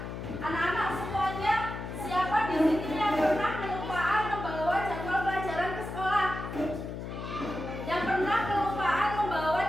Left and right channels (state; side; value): noise; left; hum, 7 dB below the sound